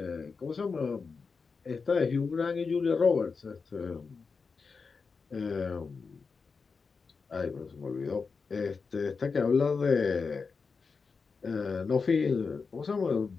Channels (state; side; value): quieter; right; 4.9 dB